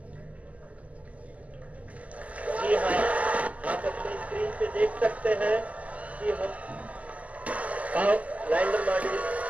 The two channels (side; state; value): left; late; 0.072 ms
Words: जी हाँ, आप अपनी स्क्रीन पे देख सकते हैं कि हम lander module.